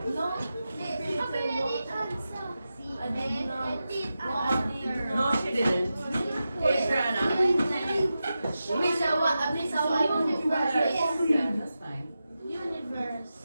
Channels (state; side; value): inverted; both; correlation -0.91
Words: No. No, she didn't. Adriana. Yeah, that's fine. Universe.